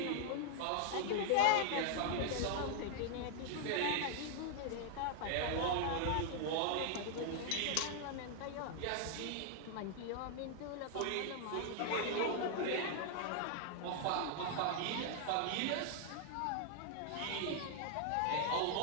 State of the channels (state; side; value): different; both; correlation 0.00